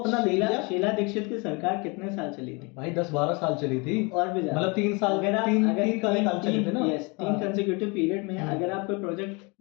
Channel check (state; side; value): quieter; right; 29.2 dB